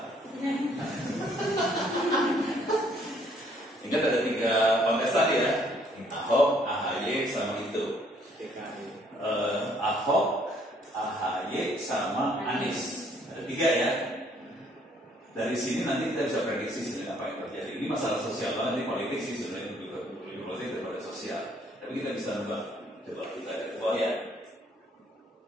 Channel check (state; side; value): normal; both; correlation 0.64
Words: Ingat ada 3 kontestan ya. Ahok, AHY, sama itu. Ahok, AHY, sama Anies. Ada 3 ya. Dari sini nanti kita bisa prediksi sebenarnya apa yang terjadi. Ini masalah sosial banget, ini politik sih sebenarnya, lebih politik daripada sosial. Tapi kita bisa nebak. Coba kita lihat ke bawah ya.